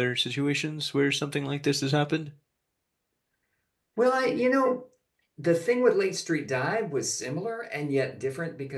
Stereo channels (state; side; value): identical; both; correlation 1.00